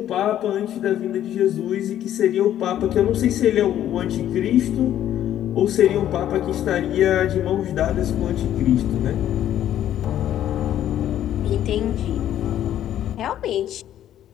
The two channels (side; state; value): right; quieter; 11.5 dB